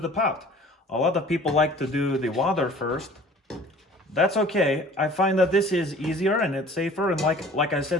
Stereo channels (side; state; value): both; normal; correlation 0.48